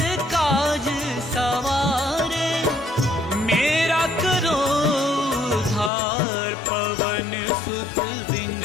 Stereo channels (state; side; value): drops out; right; at 5.9 s